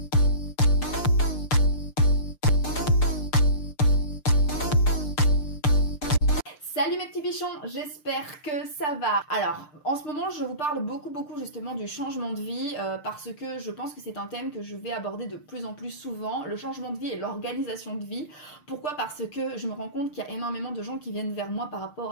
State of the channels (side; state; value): right; late; 6.7 ms